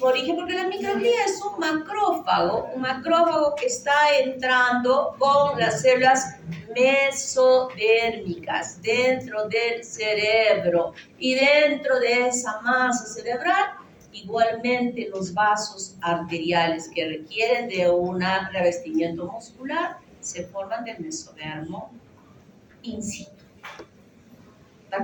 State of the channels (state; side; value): identical; both; correlation 1.00